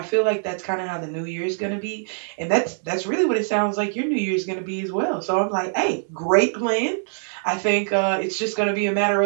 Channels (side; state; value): left; silent; 63 dB below the other